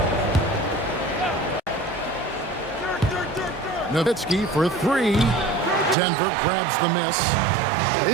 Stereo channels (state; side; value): drops out; left; at 6.0 s